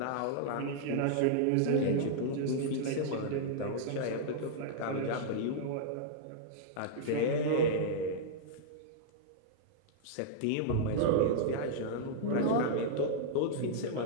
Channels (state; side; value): different; both; correlation -0.02